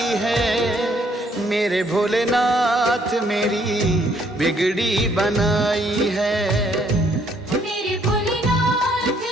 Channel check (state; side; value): normal; both; correlation 0.67